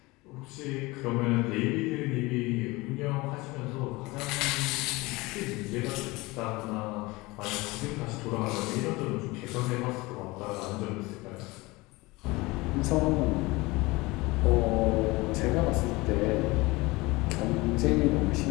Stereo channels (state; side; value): quieter; right; 22.5 dB